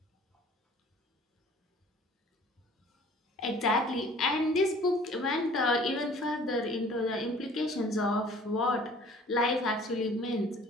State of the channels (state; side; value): normal; both; correlation 0.51